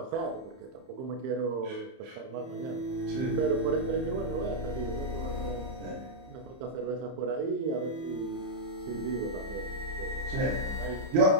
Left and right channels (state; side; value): late; left; 31 ms